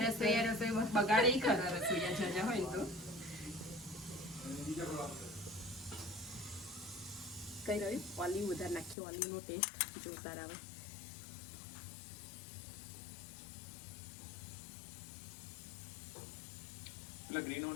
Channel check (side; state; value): right; drops out; at 9.0 s